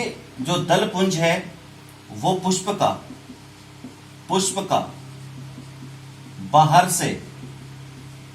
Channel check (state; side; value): identical; both; correlation 1.00